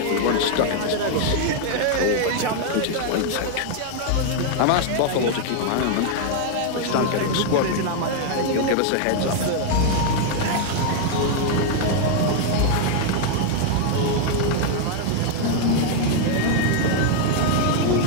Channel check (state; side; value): different; both; correlation 0.00